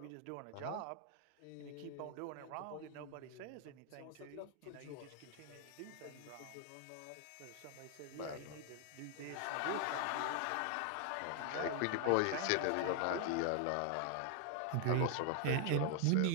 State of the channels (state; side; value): different; both; correlation 0.00